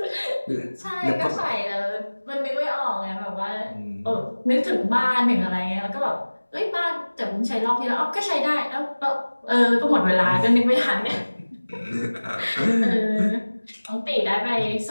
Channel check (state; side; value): inverted; both; correlation -1.00